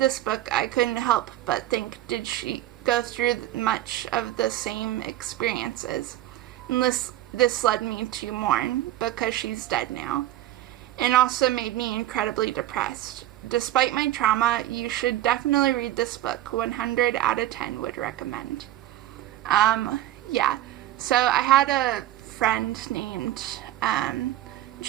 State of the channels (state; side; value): quieter; left; 14.1 dB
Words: book, I couldn't help but think, did she go through much of the same experiences? And this led me to mourn because she's dead now. And also made me incredibly depressed. Despite my trauma, you should definitely read this book. 100 out of 10 would recommend. Yeah. So I had a friend named